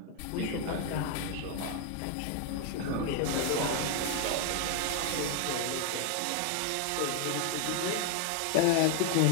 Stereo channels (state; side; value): different; both; correlation 0.01